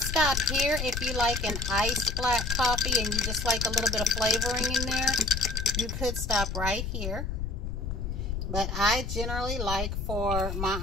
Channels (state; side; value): noise; left; rumble, 3 dB below the sound